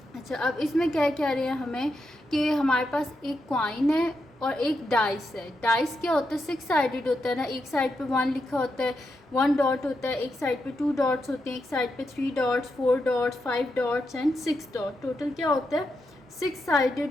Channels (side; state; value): both; normal; correlation 0.85